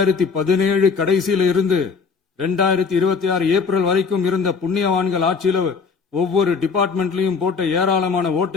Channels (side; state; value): right; quieter; 5.2 dB